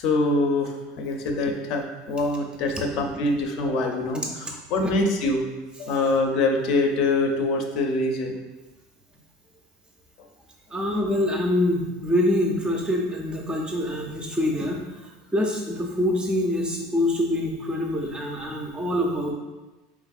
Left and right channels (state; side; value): normal; both; correlation 0.48